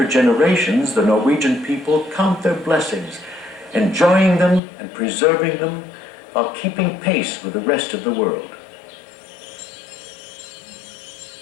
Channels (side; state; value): right; drops out; at 4.6 s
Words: generations, the Norwegian people count their blessings, enjoying them and preserving them while keeping pace with the rest of the world.